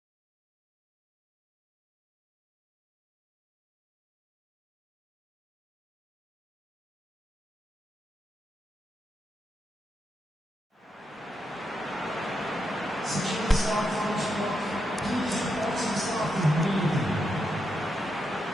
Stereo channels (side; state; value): both; normal; correlation 0.84